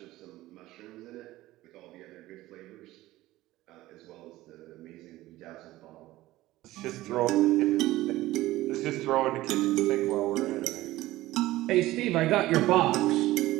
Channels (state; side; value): quieter; left; 16.9 dB